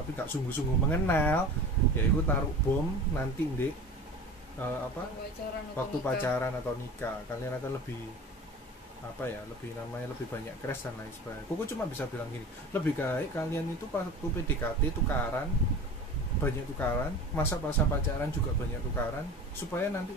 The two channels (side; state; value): both; normal; correlation 0.36